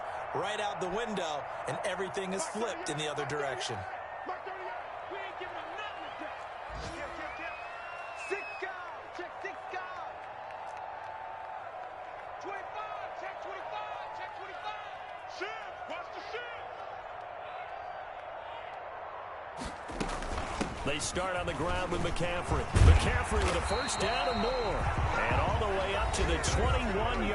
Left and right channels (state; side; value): identical; both; correlation 1.00